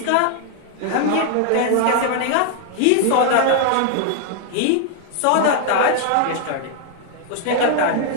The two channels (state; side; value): different; both; correlation 0.00